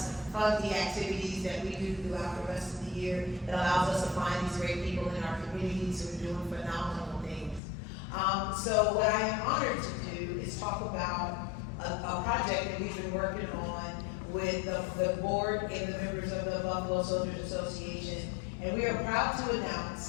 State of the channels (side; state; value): right; drops out; at 7.6 s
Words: fund the activities that we do throughout the rest of the year. It allows us to find these great people in our communities who are doing phenomenal things. So what I am honored to do is talk about a project that we've been working on with the board and the members of the Buffalo Soldiers Association. And we are proud to